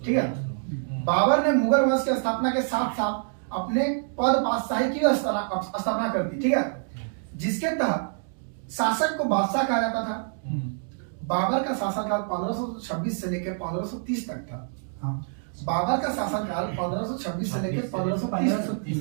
ठीक है। बाबर ने मुगल वंश की स्थापना के साथ साथ अपने पद बादशाही की स्थापना कर दी, ठीक है, जिसके तहत शासक को बादशाह कहा जाता था। बाबर का शासनकाल 1526 से लेकर 1530 तक था। बाबर का शासनकाल 1526 से लेकर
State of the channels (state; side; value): silent; left; digital silence